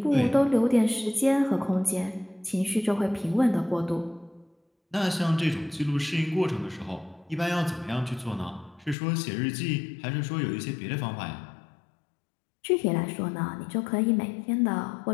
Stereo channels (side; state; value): right; drops out; at 9.0 s